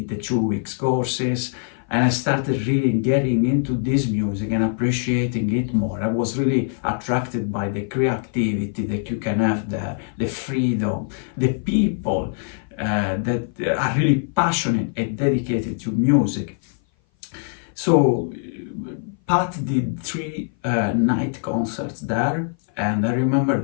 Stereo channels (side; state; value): right; silent; 57 dB below the other